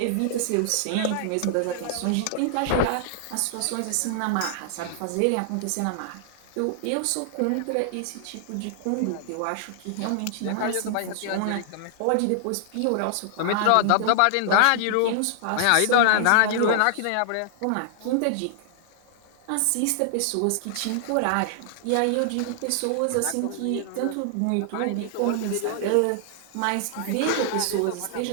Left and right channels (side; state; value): both; different; correlation 0.00